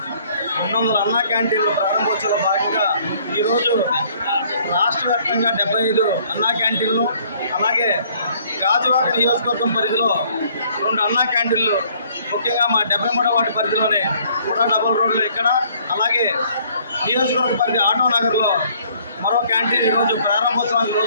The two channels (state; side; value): inverted; both; correlation -0.61